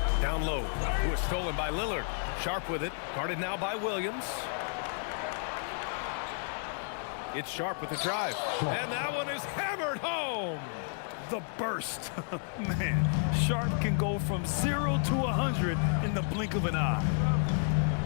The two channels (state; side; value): silent; right; 57 dB below the other